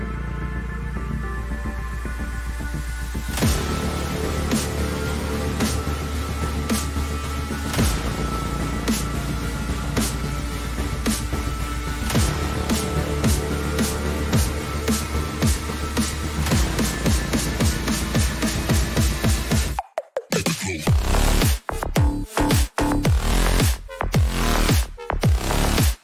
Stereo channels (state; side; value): identical; both; correlation 1.00